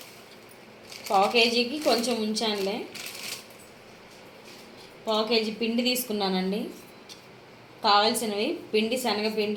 పావు కేజీకి కొంచెం ఉంచానులే. పావు కేజీ పిండి తీసుకున్నానండి. కావాల్సినవి పిండి,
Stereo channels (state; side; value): identical; both; correlation 1.00